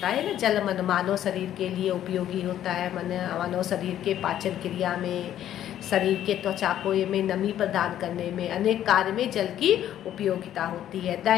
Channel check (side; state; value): right; quieter; 11.5 dB